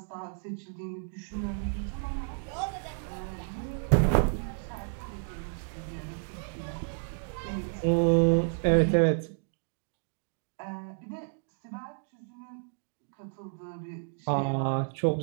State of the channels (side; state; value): left; silent; digital silence